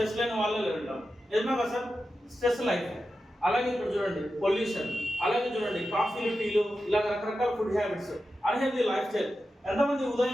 లేని వాళ్ళే లేదంటాం. నిజమే కదా సార్? Stress life. అలాగే ఇప్పుడు చూడండి పొల్యూషన్, అలాగే చూడండి కాఫీలు, టీలు, ఇలాగ రకరకాల food habits, unhealthy life style. ఎంతమంది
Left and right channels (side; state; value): both; normal; correlation 0.91